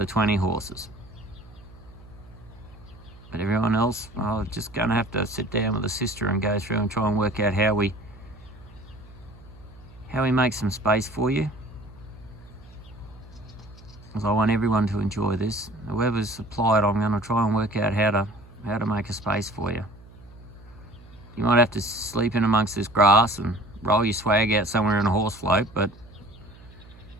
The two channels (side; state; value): right; noise; hum, 21 dB below the sound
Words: 20 horses. But everyone else, well, just going to have to sit down with a sister and go through and try and work out how we make some space for you. Because I want everyone to enjoy this. Whoever's supplied, I'm going to try and work out how to make a space for you. You might have to sleep in amongst this grass and roll your swag out somewhere in a horse float, but